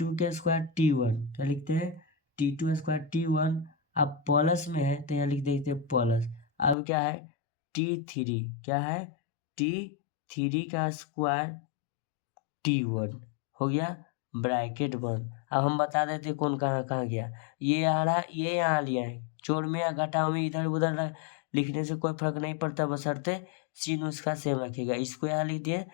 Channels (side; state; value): right; drops out; at 6.8 s